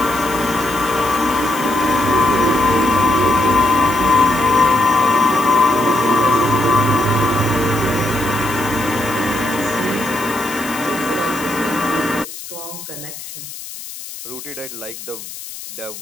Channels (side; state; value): left; noise; hiss, 12 dB below the sound